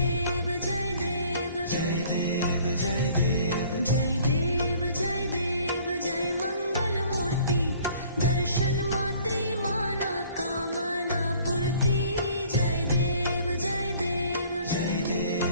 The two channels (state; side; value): inverted; both; correlation -0.54